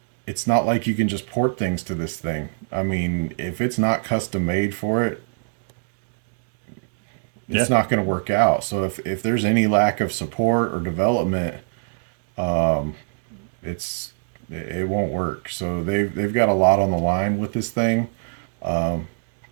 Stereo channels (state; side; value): silent; left; digital silence